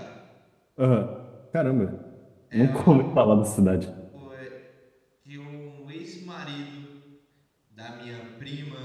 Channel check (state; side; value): identical; both; correlation 1.00